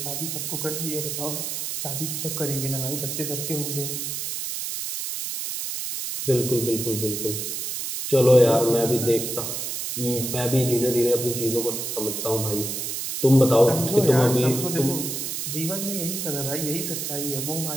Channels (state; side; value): noise; right; hiss, 4 dB below the sound